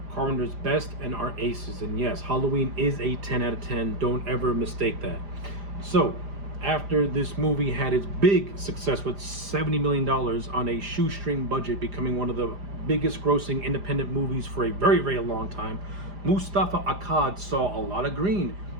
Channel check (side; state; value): left; late; 5.0 ms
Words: Carpenter's best and are aces. And yes, Halloween is a 10 out of 10. Don't ever mistake that. So, after this movie had its big success with $70 million on a shoestring budget, becoming one of the biggest grossing independent movies for a very, very long time, Mustafa Akkad saw a lot of green